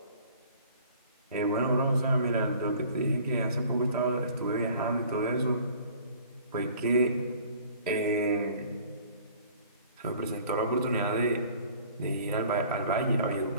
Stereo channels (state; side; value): inverted; both; correlation -0.51